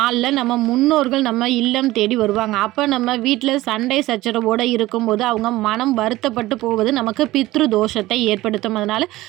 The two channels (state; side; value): quieter; left; 17.5 dB